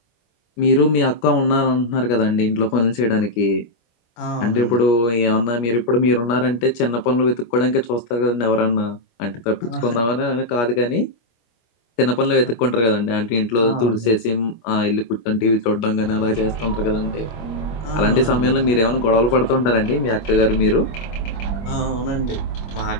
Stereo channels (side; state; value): right; late; 25 ms